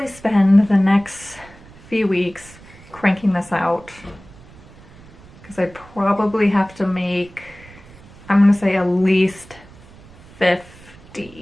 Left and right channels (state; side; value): noise; right; rumble, 22 dB below the sound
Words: spend the next few weeks cranking this out, because I probably have to make, I'm gonna say at least